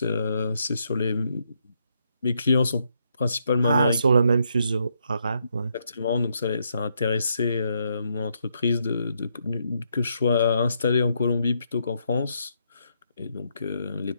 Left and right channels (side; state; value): both; inverted; correlation -0.76